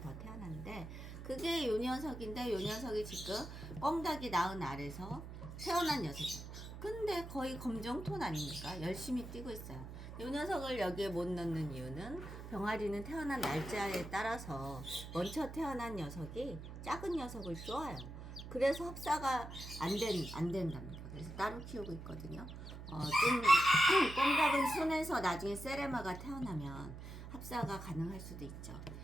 더 태어났는데 그게 요 녀석인데 요 녀석이 지금 꽁닭이 낳은 알에서 태어난 녀석이에요. 근데 거의 검정톤 아닙니까? 열심히 뛰고 있어요. 이 녀석을 여기에 못 넣는 이유는 병아리는 태어난 날짜에 따라서 먼저 태어난 녀석이 작은 녀석을 쪼아요. 그래서 합사가 안 된답니다. 그래서 따로 키우고 있거든요. 좀 꽁닭은 순해서 나중에 세레마가 태어나면 합사가 가능할 수도 있죠.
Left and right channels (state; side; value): noise; right; hum, 10 dB below the sound